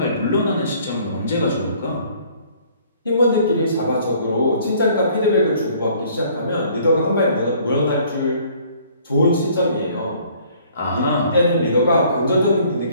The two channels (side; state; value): both; inverted; correlation -0.58